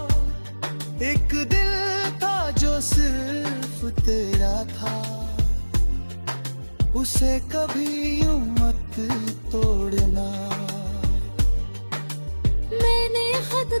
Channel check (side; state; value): both; inverted; correlation -1.00